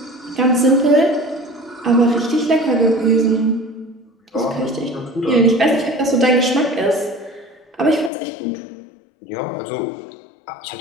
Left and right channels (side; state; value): right; drops out; at 8.1 s